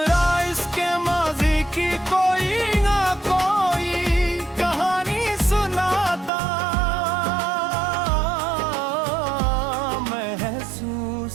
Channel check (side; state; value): left; drops out; at 6.3 s